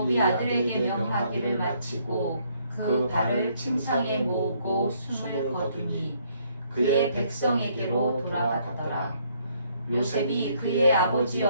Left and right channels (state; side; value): inverted; both; correlation -0.68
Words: 아들에게 명하기를 마치고 그 발을 침상에 모으고 숨을 거두니 그의 백성에게로 돌아가더라. 요셉이 그의 아버지